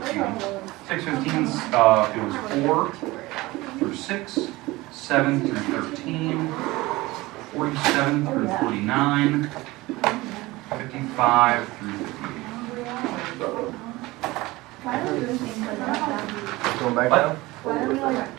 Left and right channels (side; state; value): left; quieter; 20.3 dB